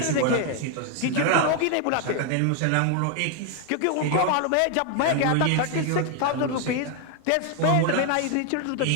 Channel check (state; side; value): different; both; correlation 0.01